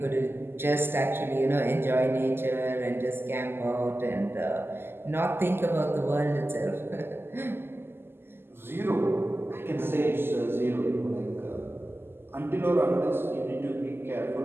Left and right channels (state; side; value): late; left; 0.11 ms